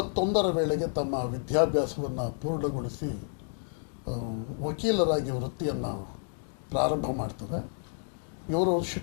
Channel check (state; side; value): silent; right; digital silence